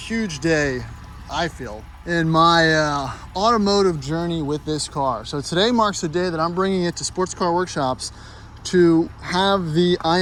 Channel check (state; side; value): identical; both; correlation 1.00